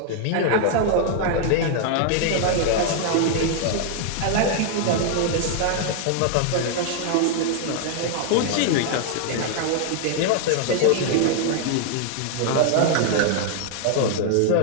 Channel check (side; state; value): both; different; correlation 0.00